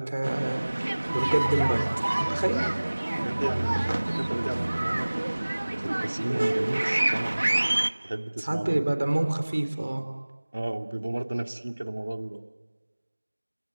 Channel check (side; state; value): both; inverted; correlation -1.00